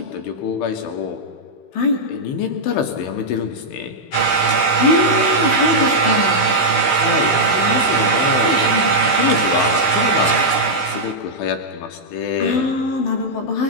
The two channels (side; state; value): right; late; 16 ms